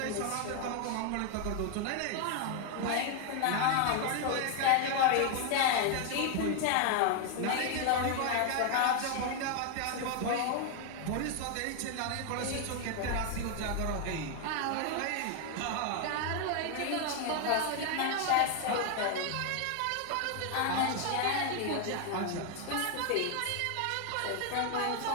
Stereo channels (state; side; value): different; both; correlation 0.00